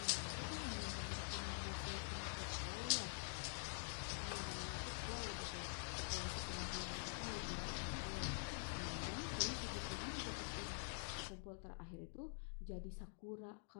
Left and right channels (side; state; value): right; silent; digital silence